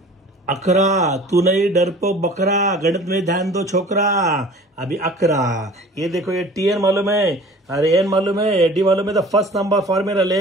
अकरा तू नहीं डरपोक बकरा, गणित में ध्यान दो छोकरा। अभी अकरा, ये देखो ये Tn मालूम है, अरे n मालूम है, डी मालूम है, तो फर्स्ट नंबर फॉर्मूला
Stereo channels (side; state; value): both; normal; correlation 0.45